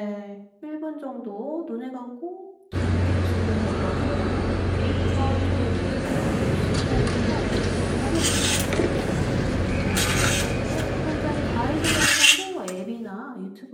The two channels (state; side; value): identical; both; correlation 1.00